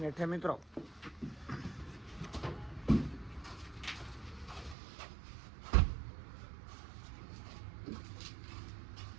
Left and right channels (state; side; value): drops out; left; at 4.8 s